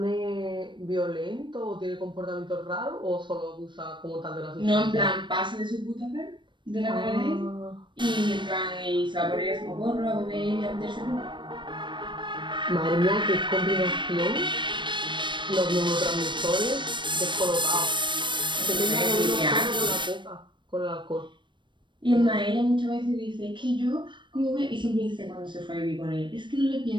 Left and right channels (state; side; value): late; left; 0.23 ms